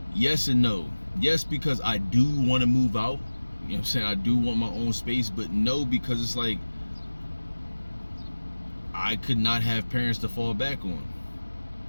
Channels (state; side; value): inverted; both; correlation -1.00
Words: yes and no. Yes, because I do want to move out, you know what I'm saying, I do want my own space. But no, because it's like I could not have parents to fall back on.